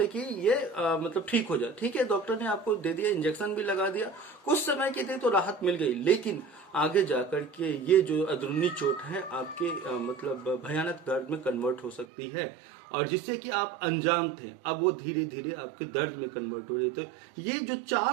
कि ये मतलब ठीक हो जाए, ठीक है, डॉक्टर ने आपको दे दिया, इंजेक्शन भी लगा दिया, कुछ समय के लिए तो राहत मिल गई, लेकिन आगे जाकर के ये जो अंदरूनी चोट है आपके मतलब भयानक दर्द में कन्वर्ट हो सकती है, और जिससे कि आप अनजान थे, अब वो धीरे धीरे आपके दर्द में कन्वर्ट हो रही। तो ये जो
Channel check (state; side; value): drops out; left; at 12.1 s